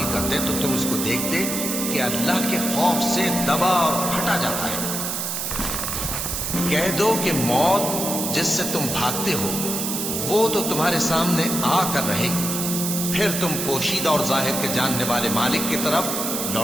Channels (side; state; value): right; noise; hiss, 2 dB below the sound